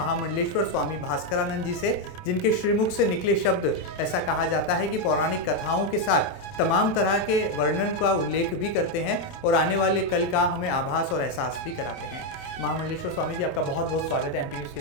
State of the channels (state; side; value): late; right; 28 ms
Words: स्वामी भास्करानंद जी से, जिनके श्रीमुख से निकले शब्द ऐसा कहा जाता है कि पौराणिक कथाओं के साथ तमाम तरह के वर्णन का उल्लेख भी करते हैं और आने वाले कल का हमें आभास और एहसास भी कराते हैं। महामंडलेश्वर स्वामी जी, आपका बहुत बहुत स्वागत है एमपी न्यूज़ के